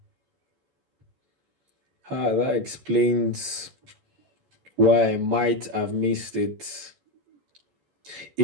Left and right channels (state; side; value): late; left; 14 ms